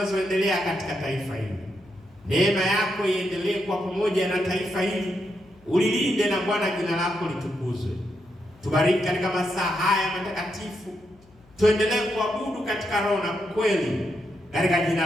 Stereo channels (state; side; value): noise; left; hum, 28 dB below the sound